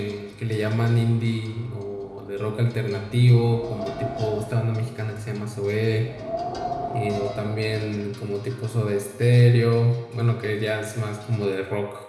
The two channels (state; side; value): identical; both; correlation 1.00